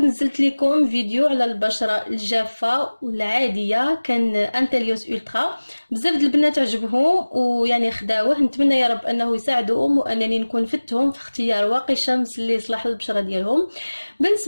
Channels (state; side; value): inverted; both; correlation -1.00